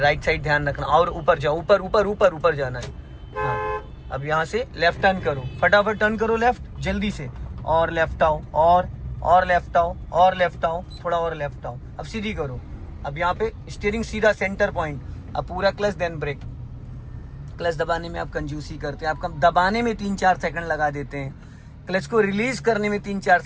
साइड ध्यान रखना और ऊपर जाओ। ऊपर ऊपर ऊपर ऊपर जाना है। हाँ, अब यहाँ से लेफ्ट टर्न करो। फटाफट टर्न करो लेफ्ट, जल्दी से। और लेफ्ट आओ, और लेफ्ट आओ, और लेफ्ट आओ, थोड़ा और लेफ्ट आओ। अब सीधी करो। अब यहाँ पे स्टीयरिंग सीधा सेंटर पॉइंट। अब पूरा क्लच देन ब्रेक। क्लच दबाने में आप कंजूसी करते हैं। आपका दबाने में 3-4 सेकंड लगा देते हैं। क्लच को रिलीज करने में 3-4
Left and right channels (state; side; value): identical; both; correlation 1.00